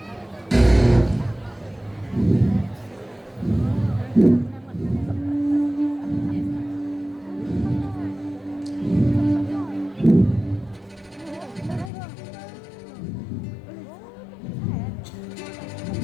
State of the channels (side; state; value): right; drops out; at 11.9 s